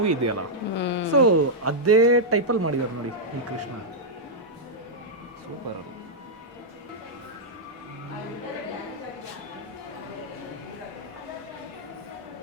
ಇದೆಯಲ್ಲ, ಸೊ ಅದೇ ಟೈಪಲ್ಲಿ ಮಾಡಿದ್ದಾರೆ ನೋಡಿ ಈ ಕೃಷ್ಣ. ಸೂಪರ್. ಅದು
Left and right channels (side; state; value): both; normal; correlation -0.06